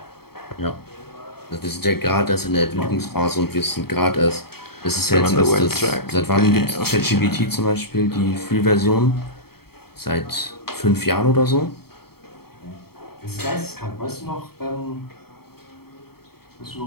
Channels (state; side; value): late; right; 0.95 ms